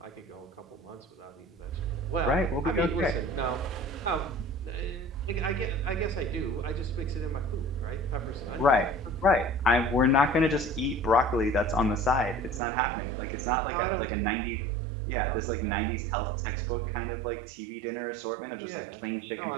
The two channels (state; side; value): drops out; left; at 12.6 s